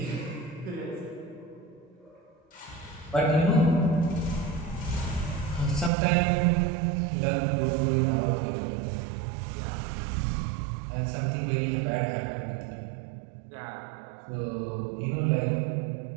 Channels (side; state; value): left; drops out; at 5.9 s